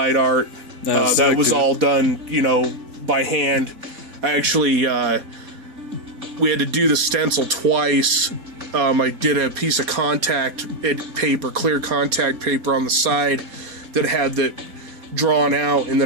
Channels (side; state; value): left; late; 4.2 ms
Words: art. That was all done, you know, by hand. I actually, we had to do the stencil twice. I did a piece of contact paper, clear contact paper on the side that had that drawn out, and